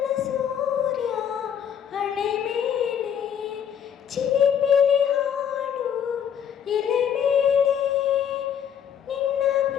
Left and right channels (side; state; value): right; quieter; 8.5 dB